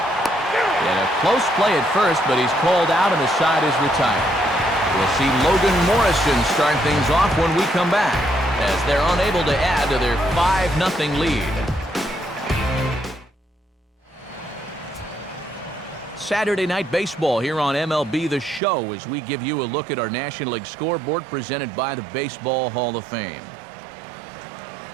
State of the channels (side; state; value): left; drops out; at 18.6 s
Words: a close play at first, but he's called out and the side is retired. We'll see Logan Morrison start things off when we come back, as they're unable to add to their 5-0 lead. Saturday Night Baseball here on MLB The Show as we give you a look at our National League scoreboard presented by the Baseball Hall of Fame.